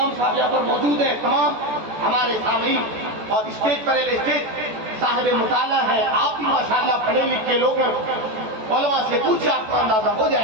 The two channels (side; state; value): left; late; 14 ms